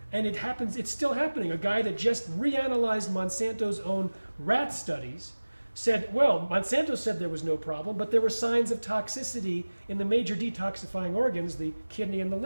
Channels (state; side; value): inverted; both; correlation -1.00